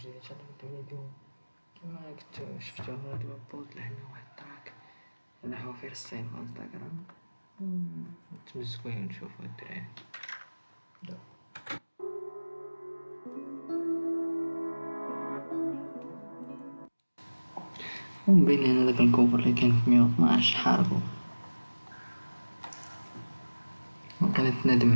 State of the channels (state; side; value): inverted; both; correlation -1.00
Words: ان شاء الله نبداو فيديو كما كنتو شفتو هو دابا بوست لحنا واحد التراك انا حوافير الصين في انستغرام نتمزكو ونشوفو الدراري ومبين هنا داك الكوفر اللي كان في 112 حاربو وكانت ندم